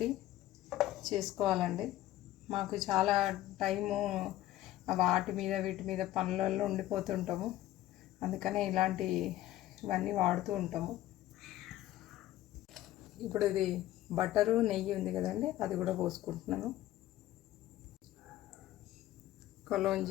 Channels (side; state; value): right; quieter; 14.5 dB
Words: చేసుకోవాలండి. మాకు చాలా టైము వాటి మీద వీటి మీద పనులలో ఉండిపోతుంటాము. అందుకనే ఇవన్నీ వాడుతూ ఉంటాము. ఇప్పుడు ఇది బటరు నెయ్యి ఉంది కదండి, అది కూడా పోసుకుంటున్నాను.